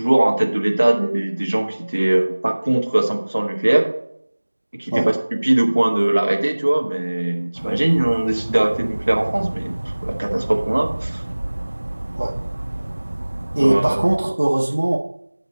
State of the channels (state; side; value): inverted; both; correlation -1.00